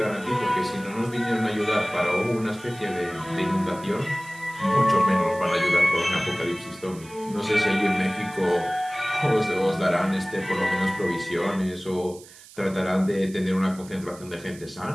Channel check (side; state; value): right; noise; hiss, 20 dB below the sound